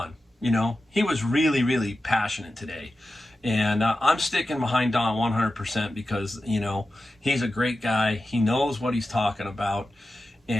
He was really, really passionate today. And I'm sticking behind Don 100% because, he's a great guy. He knows what he's talking about.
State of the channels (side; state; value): both; normal; correlation 0.93